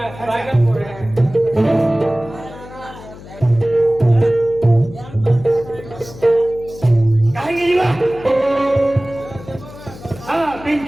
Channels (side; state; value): left; noise; hum, 17 dB below the sound